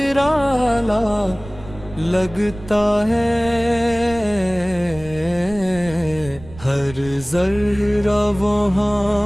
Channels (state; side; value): noise; right; rumble, 16 dB below the sound